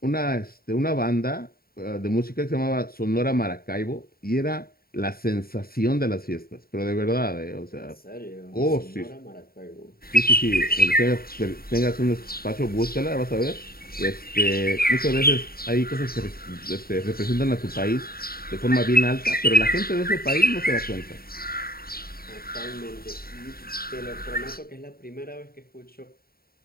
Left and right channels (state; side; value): late; right; 0.43 ms